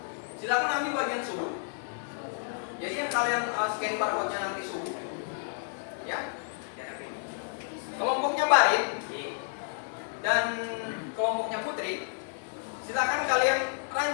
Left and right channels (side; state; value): right; silent; 57 dB below the other